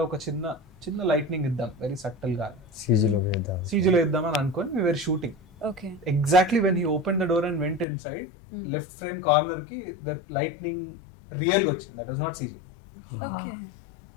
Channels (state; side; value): drops out; right; at 7.9 s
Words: ఒక చిన్న లైట్నింగ్ ఇద్దాం, వెరీ సటిల్ గా సీజీలో ఇద్దామని అనుకొని we were shooting. Okay. Exactly when he opened the door and went inside, left frame corner ki the lightning real ga ochindi. That was not CG. Okay.